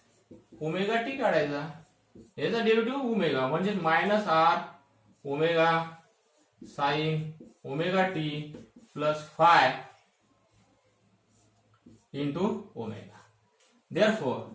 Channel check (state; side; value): identical; both; correlation 1.00